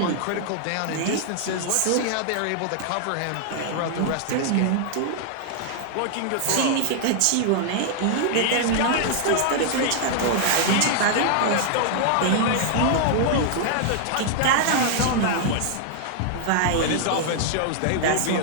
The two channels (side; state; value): both; different; correlation -0.01